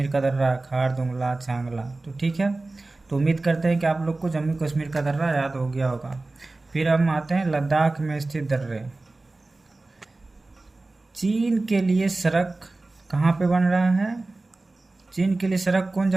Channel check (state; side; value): quieter; left; 3.2 dB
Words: का दर्रा, खारदुंगला, चांगला। तो ठीक है, तो उम्मीद करते हैं कि आप लोग को जम्मू कश्मीर का दर्रा याद हो गया होगा। फिर हम आते हैं लद्दाख में स्थित दर्रे। चीन के लिए सड़क कहाँ पे बन रहा है? चीन के लिए सड़क कौन